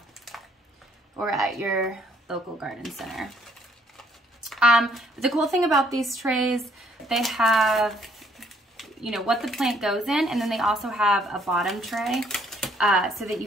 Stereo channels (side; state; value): both; normal; correlation 0.65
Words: or at your local garden center. The cool thing about these trays, they have, you know, what the plant goes in, and then they also have a bottom tray so that you